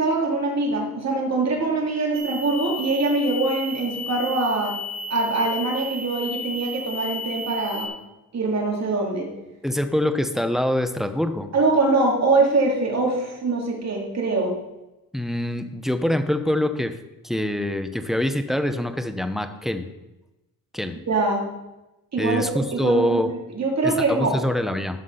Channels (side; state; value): both; normal; correlation 0.36